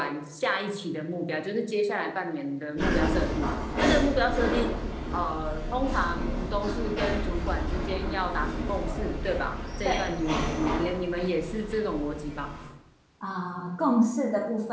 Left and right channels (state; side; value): identical; both; correlation 1.00